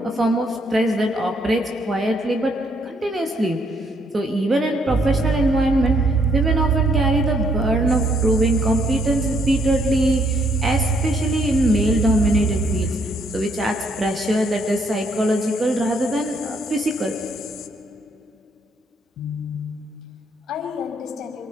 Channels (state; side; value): normal; both; correlation 0.70